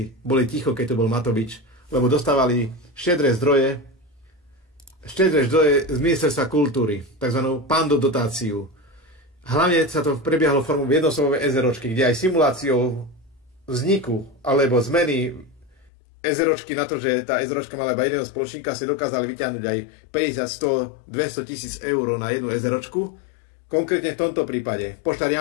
boli ticho, keď to bol Matovič, lebo dostávali štedré zdroje z ministerstva kultúry, takzvanú Pando dotáciu. Hlavne sa to prebiehalo formou jednosobové SROčky, kde aj simuláciou vzniku alebo zmeny SROčky na to, že tá SROčka mala iba jedného spoločníka, si dokázali vyťahnuť aj 50, 100, 200 tisíc eur na jednu SROčku. Konkrétne v tomto prípade Poštár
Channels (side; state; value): right; drops out; at 15.9 s